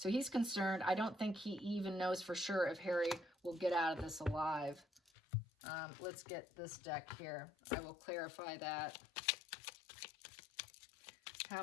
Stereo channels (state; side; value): drops out; right; at 5.0 s